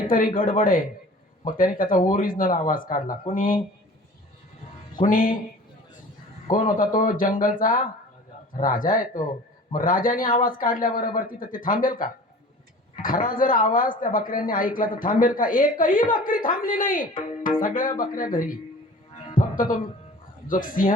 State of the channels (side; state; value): both; normal; correlation 0.43